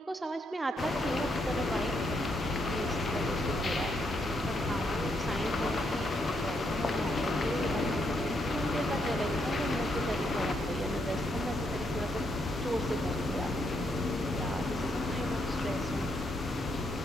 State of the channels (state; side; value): normal; both; correlation 0.77